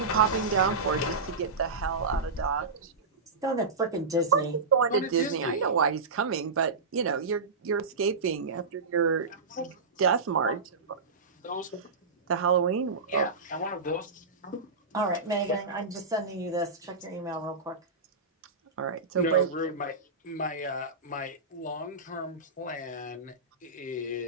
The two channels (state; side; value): quieter; left; 4.2 dB